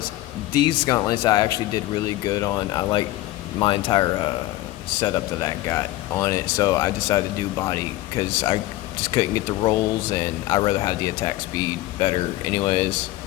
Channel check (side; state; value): right; quieter; 16.8 dB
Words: These gauntlets I actually did really good on. I like my entire setup that I got on it, so I decided to do body because I just couldn't get the rolls, and I'd rather have the attack speed better. Anyways,